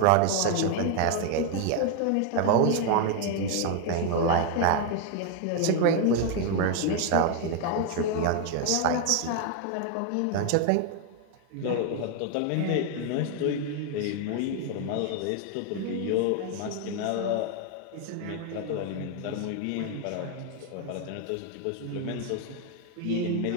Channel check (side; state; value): both; different; correlation 0.00